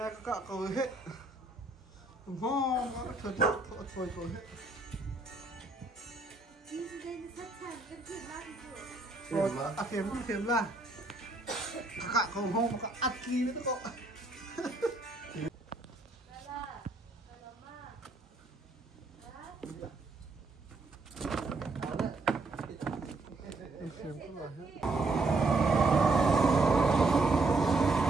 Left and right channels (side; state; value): left; quieter; 3.3 dB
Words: cả cầu hết ngon nó thôi hết kem là cả cầu hôm cả ăn kia nữa cậu em xem có là hết